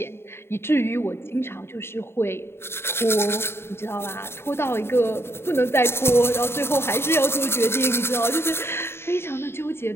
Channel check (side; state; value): right; late; 0.12 ms